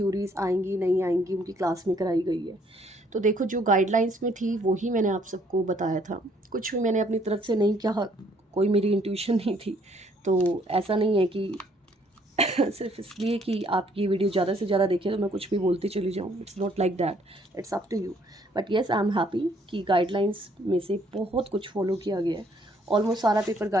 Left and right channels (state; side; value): normal; both; correlation 0.65